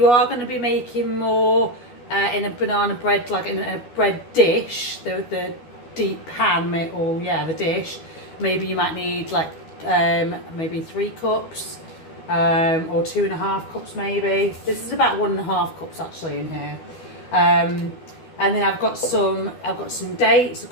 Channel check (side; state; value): right; late; 12 ms